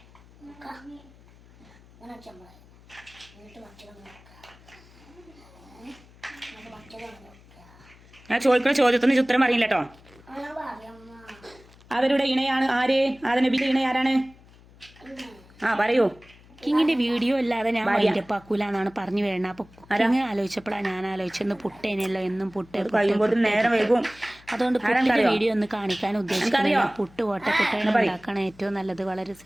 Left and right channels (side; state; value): left; noise; hum, 25 dB below the sound